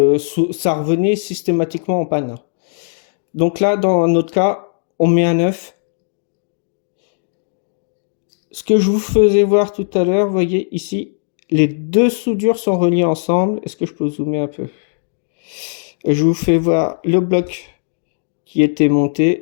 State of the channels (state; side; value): silent; right; digital silence